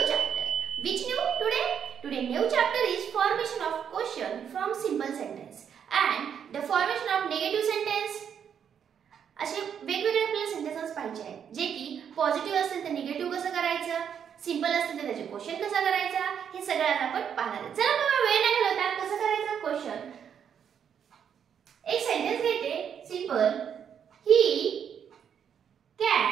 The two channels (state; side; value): quieter; left; 8.1 dB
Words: chapter. Which new today? Today new chapter is formation of question from simple sentence and the formation of negative sentence. असे वेगवेगळे आपल्याला sentences पाहिजे आहेत जे की positive असतील तर negative कसं करायचं, सिंपल असतील तर त्याचे क्वेश्चन कसा करायचा हे सगळं आपण पाहणार आहोत. चला मग वेळ न घालवता कसं करायचं क्वेश्चन. एक सेंटेन्स घेते simple, he